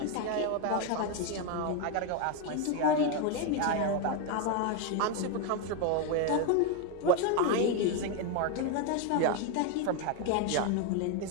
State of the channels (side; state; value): both; different; correlation 0.01